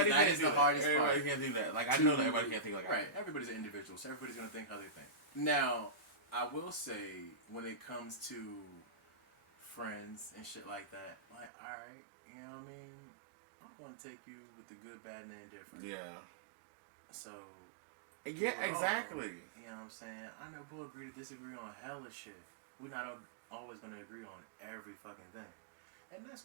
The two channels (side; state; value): left; drops out; at 11.5 s